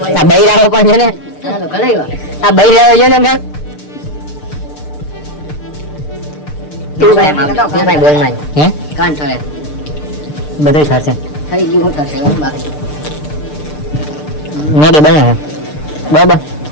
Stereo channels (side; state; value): right; late; 6.7 ms